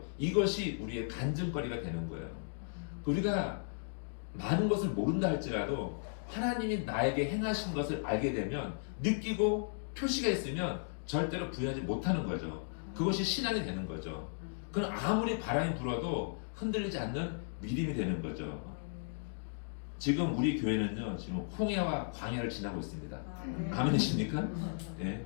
이것이 우리의 간증거리가 되는 거예요. 우리가 많은 것을 모른다 할지라도 하나님이 나에게 행하신 것을 알게 되면, 느끼고 표시가 있으면 절대로 부인하지 못하는 거죠. 그것이 신앙이 되는 거죠. 그건 아무리 바람이 불어도 흔들리지 않는 믿음이 되는 거죠. 지금 우리 교회는요, 지금 홍해와 광야를 지나고 있습니다. 아멘이십니까? 네.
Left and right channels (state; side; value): silent; right; digital silence